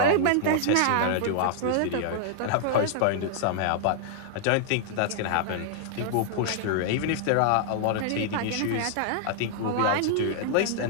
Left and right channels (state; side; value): different; both; correlation -0.01